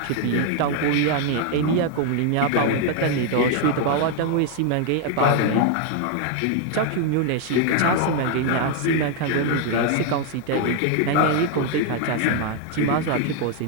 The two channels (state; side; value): different; both; correlation 0.00